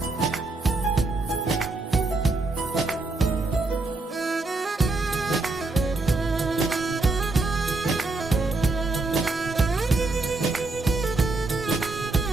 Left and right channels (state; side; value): quieter; left; 3.4 dB